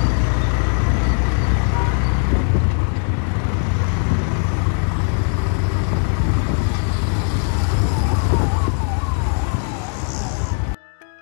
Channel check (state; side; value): silent; right; 57 dB below the other